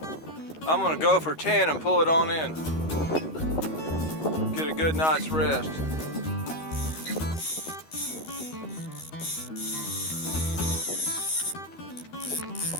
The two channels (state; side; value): late; right; 13 ms